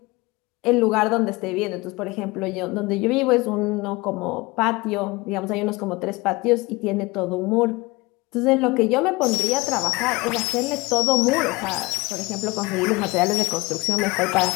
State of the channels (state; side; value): quieter; right; 23.3 dB